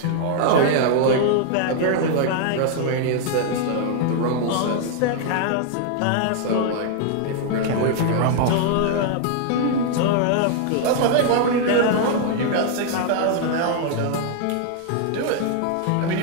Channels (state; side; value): different; both; correlation 0.00